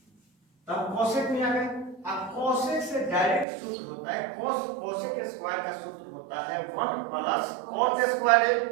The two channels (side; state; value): left; drops out; at 3.5 s